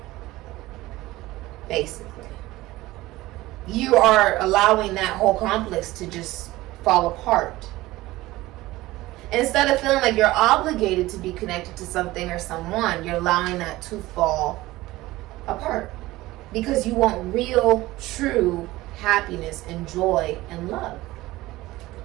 Basically. You are allowing that whole complex to just fall apart. Instead of feeling like you're obligated to be connected to something or someone, you're allowing that to fall apart. Because you want real, true happiness and joy and love.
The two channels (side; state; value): left; quieter; 18.1 dB